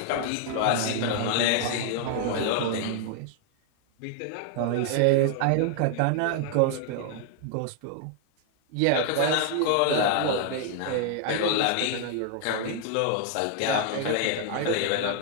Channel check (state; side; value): different; both; correlation 0.00